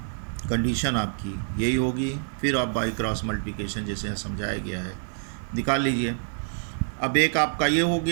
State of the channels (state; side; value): silent; left; digital silence